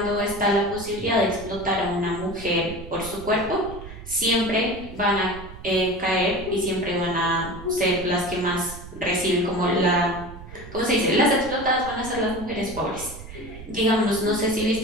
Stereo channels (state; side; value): noise; right; rumble, 14 dB below the sound